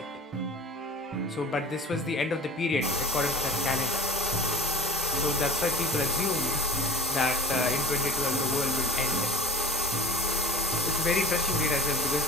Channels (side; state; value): both; normal; correlation 0.41